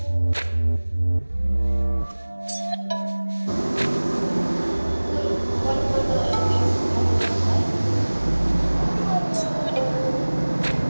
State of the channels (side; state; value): both; inverted; correlation -1.00